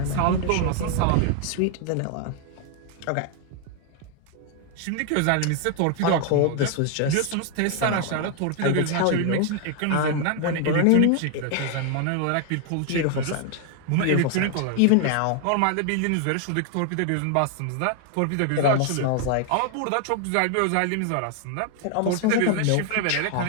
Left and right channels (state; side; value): different; both; correlation 0.00